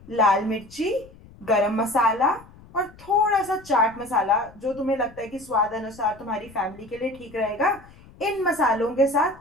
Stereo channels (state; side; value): noise; left; rumble, 23 dB below the sound